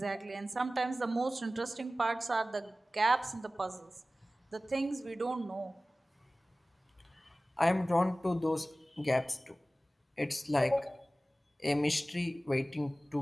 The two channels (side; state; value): both; normal; correlation 0.97